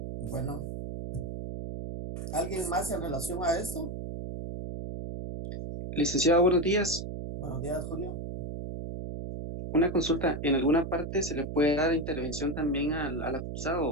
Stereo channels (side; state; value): right; noise; hum, 6 dB below the sound